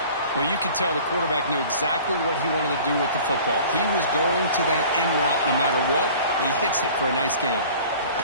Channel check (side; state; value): both; inverted; correlation -0.46